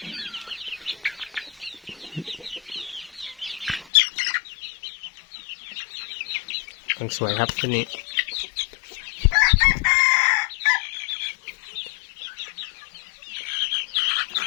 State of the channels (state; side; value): drops out; right; at 3.9 s